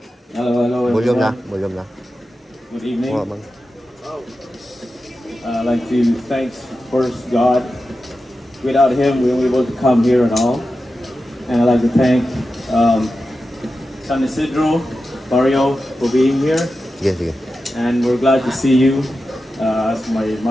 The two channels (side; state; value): both; normal; correlation 0.92